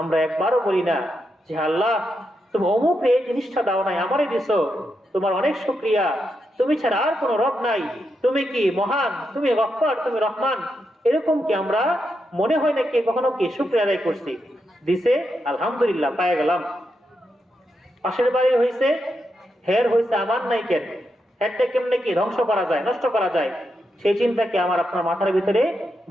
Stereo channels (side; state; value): both; normal; correlation 0.84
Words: আমরা একবারও বলি না যে আল্লাহ তুমি অমুক এই জিনিসটা দাও নাই, আমারই দিছো, তোমার অনেক শুকরিয়া, তুমি ছাড়া আর কোনো রব নাই, তুমি কি মহান, তুমি গফফার, তুমি রহমান। এরকম কি আমরা মনে হয় না কি কখনো কি শুকরিয়া আদায় করছি, দিছে আলহামদুলিল্লাহ পায়ে গেলাম, পাশের বাড়ি হয়েছে হের হয়েছে আমার নাই কেন, হেরটা কেমনে কি ধ্বংস করা যায়, নষ্ট করা যায়, সেই চিন্তা কি আমার আপনার মাথার ভিতরে